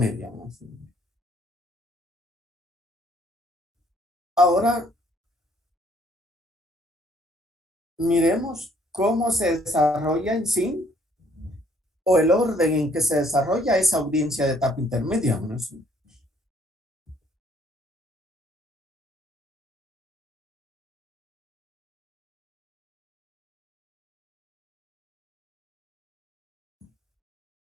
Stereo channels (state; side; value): normal; both; correlation 0.64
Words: Ahora, miremos cómo se desarrolla en sí o el orden en que se desarrolla esa audiencia de etapa intermedia.